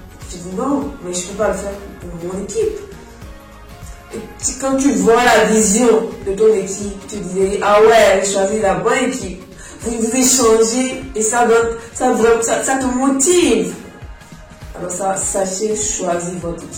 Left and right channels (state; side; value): identical; both; correlation 1.00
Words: tu dis non, mais je ne peux pas le faire pour mon équipe. Et quand tu vois la vision de ton équipe, tu dis ah ouais, j'ai choisi la bonne équipe. Vous échangez et ça te motive. Alors sachez choisir votre